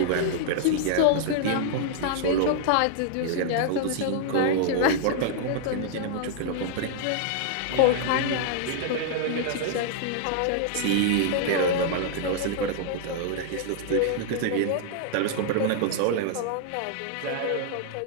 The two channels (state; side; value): different; both; correlation -0.01